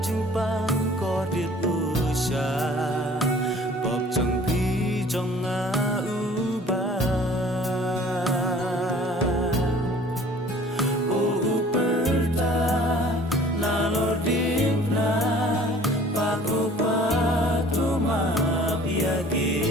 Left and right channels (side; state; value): both; normal; correlation 0.51